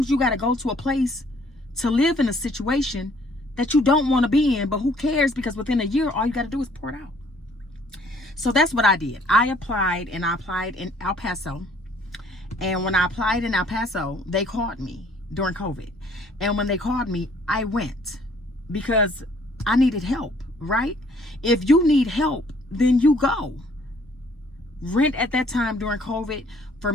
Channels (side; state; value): both; normal; correlation 0.60